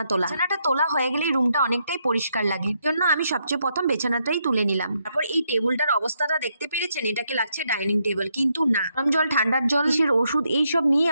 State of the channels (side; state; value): both; inverted; correlation -0.78